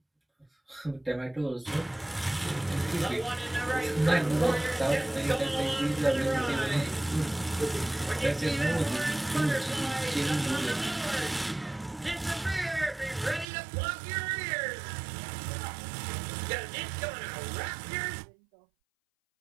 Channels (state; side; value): drops out; left; at 13.5 s